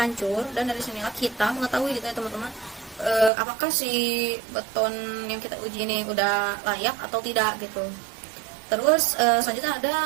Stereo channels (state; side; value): drops out; left; at 3.3 s